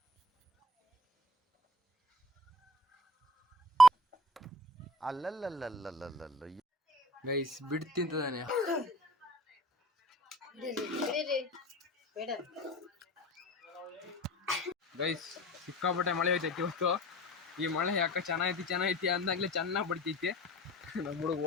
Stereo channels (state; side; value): normal; both; correlation 0.43